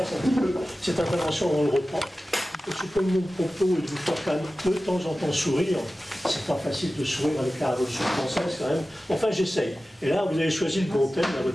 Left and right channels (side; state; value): both; normal; correlation 0.95